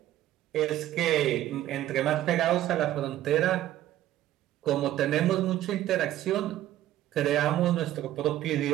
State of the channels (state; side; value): quieter; left; 13.4 dB